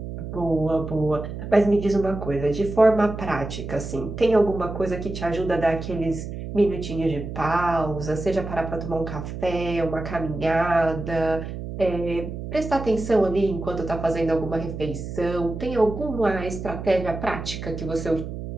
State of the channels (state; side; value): noise; right; hum, 8 dB below the sound